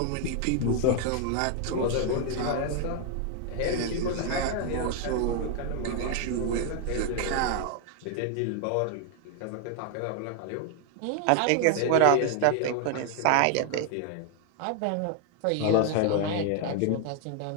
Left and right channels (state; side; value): different; both; correlation 0.00